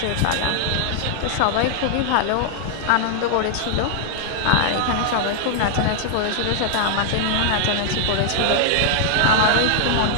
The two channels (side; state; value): both; different; correlation -0.01